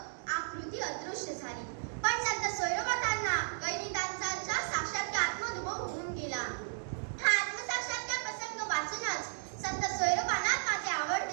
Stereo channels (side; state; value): left; silent; digital silence